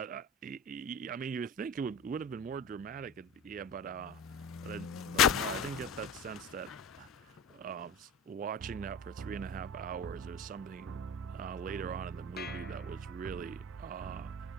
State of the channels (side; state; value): both; normal; correlation 0.34